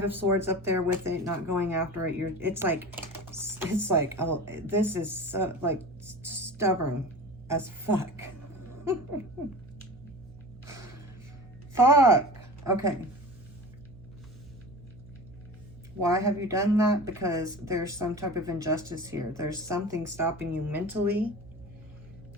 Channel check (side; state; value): right; noise; hum, 19 dB below the sound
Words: of Swords up there with it, not going after it. It's like, oh, this is so, like, stubborn as fuck. Fuck. Okay. Why have you done that? Because there's some type of injustice here. There's something stopping you mentally.